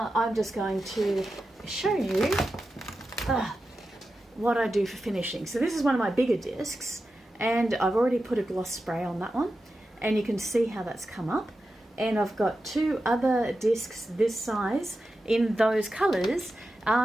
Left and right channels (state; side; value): normal; both; correlation 0.91